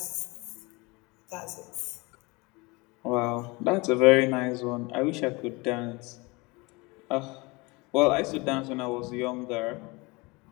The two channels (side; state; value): right; quieter; 25.3 dB